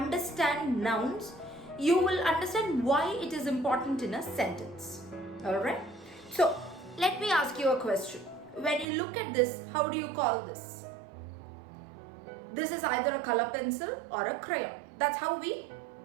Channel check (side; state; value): left; drops out; at 8.8 s